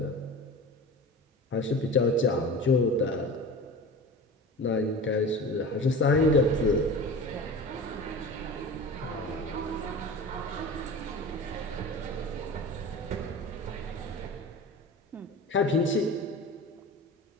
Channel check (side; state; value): both; normal; correlation 0.34